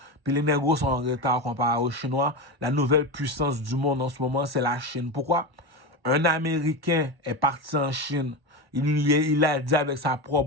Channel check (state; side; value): late; left; 1.1 ms